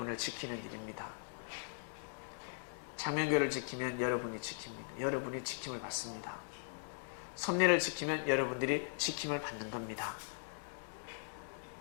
지키는 일입니다. 창명교회를 지키면 여러분이 지킵니다. 여러분이 지킴을 받습니다. 섭리를 지키면 여러분들이 지킴을 받는 겁니다.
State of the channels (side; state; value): right; silent; digital silence